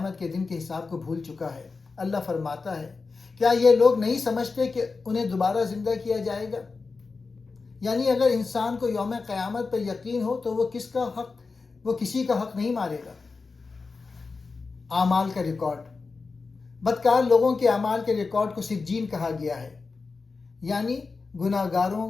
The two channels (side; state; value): right; quieter; 4.3 dB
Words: کے دن کے حساب کو بھول چکا ہے۔ اللہ فرماتا ہے، کیا یہ لوگ نہیں سمجھتے کہ انہیں دوبارہ زندہ کیا جائے گا؟ یعنی اگر انسان کو یوم قیامت پر یقین ہو تو وہ کسی کا حق نہیں مارے گا۔ اعمال کا ریکارڈ، بدکار لوگوں کے اعمال کے ریکارڈ کو سجین کہا گیا ہے، یعنی گناہ گاروں